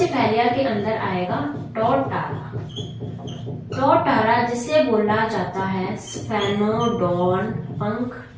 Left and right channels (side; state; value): both; identical; correlation 1.00